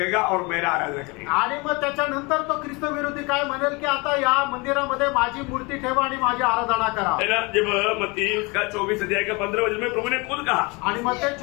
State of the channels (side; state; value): right; quieter; 27.3 dB